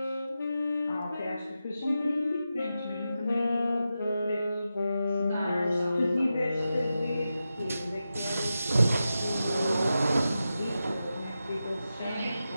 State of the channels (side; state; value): both; inverted; correlation -0.90